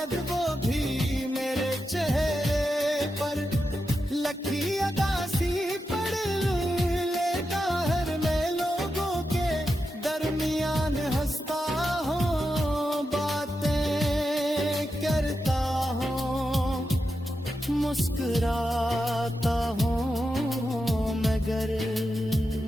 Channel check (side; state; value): both; normal; correlation 0.88